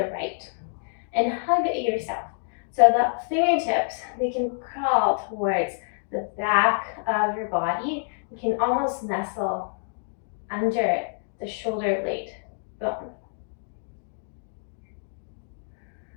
right and hug yourself. So the fingertips, they can crawl towards the back of your body. You can almost nestle under the shoulder blade bone.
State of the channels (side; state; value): right; silent; digital silence